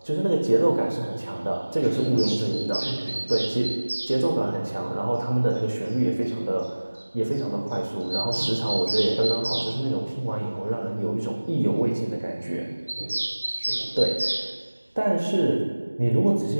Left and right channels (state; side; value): inverted; both; correlation -1.00